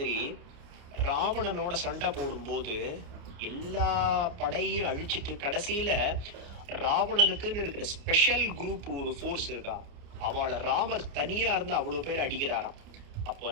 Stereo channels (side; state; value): left; late; 28 ms